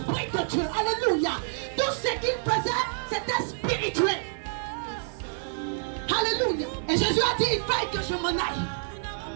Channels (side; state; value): left; silent; 56 dB below the other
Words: de Dieu. Alléluia. Tout ce qu'ils faisaient, c'était spirituel. Alléluia. Et Jésus a dit, il faille que je m'en aille.